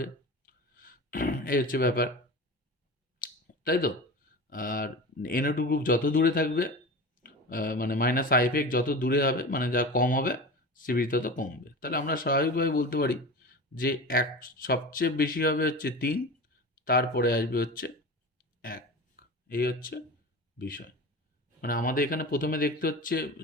এই হচ্ছে ব্যাপার, তাই তো? আর NO2 গ্রুপ যত দূরে থাকবে, মানে মাইনাস আই এফেক্ট যত দূরে হবে, মানে যা কম হবে, স্টেবিলিটি তত কমবে। তাহলে আমরা স্বাভাবিকভাবে বলতে পারি যে সবচেয়ে বেশি হবে হচ্ছে 3, তারপরে আসবে হচ্ছে 1। এই হচ্ছে বিষয়। মানে আমাদের এখানে প্রথমে দেখতে হচ্ছে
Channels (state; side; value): normal; both; correlation 0.31